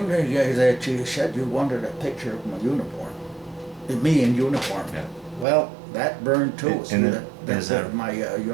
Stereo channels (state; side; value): drops out; left; at 5.5 s